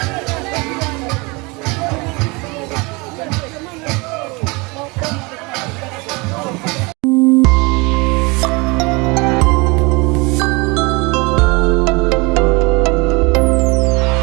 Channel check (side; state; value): left; quieter; 26.8 dB